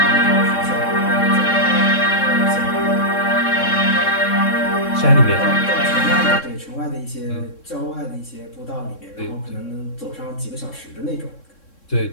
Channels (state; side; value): late; right; 3.6 ms